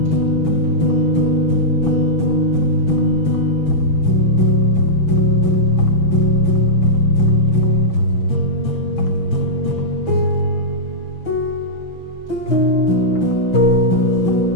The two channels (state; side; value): late; right; 6.0 ms